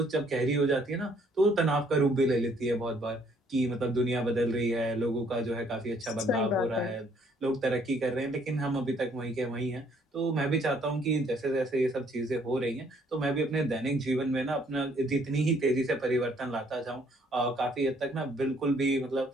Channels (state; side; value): normal; both; correlation 0.64